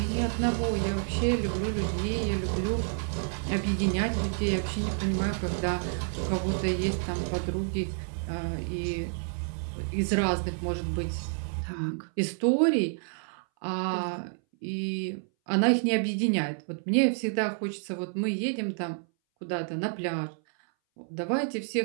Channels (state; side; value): silent; left; 58 dB below the other